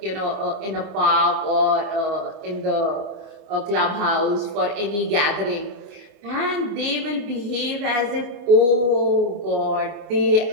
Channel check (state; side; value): late; left; 25 ms